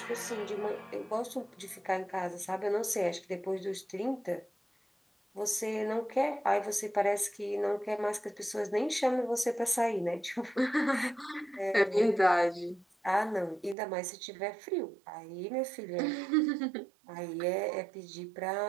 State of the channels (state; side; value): drops out; left; at 13.8 s